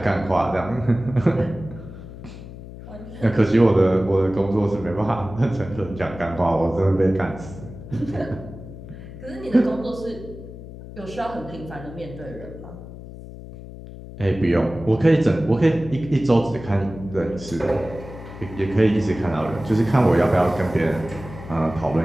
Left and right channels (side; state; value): left; noise; hum, 14 dB below the sound